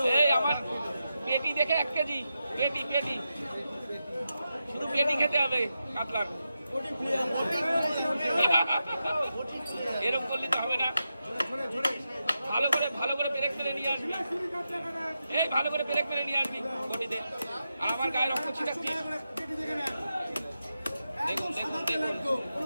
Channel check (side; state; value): both; inverted; correlation -0.89